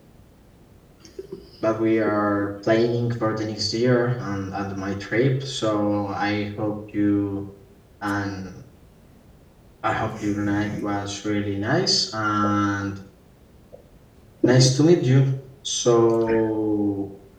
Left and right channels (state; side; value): identical; both; correlation 1.00